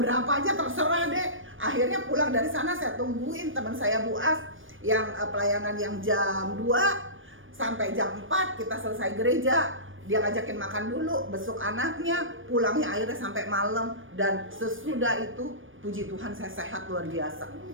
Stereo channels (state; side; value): late; left; 0.58 ms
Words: aja terserah deh. Akhirnya pulang dari sana saya tungguin teman saya Bu As yang pelayanan yang jam 2 sampai jam 4 kita selesai gereja. Dia ngajakin makan dulu, besok anaknya, pulangnya akhirnya sampai malam. Dan sesudah itu puji Tuhan saya sehat luar biasa.